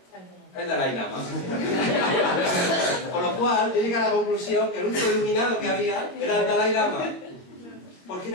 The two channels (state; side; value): late; right; 21 ms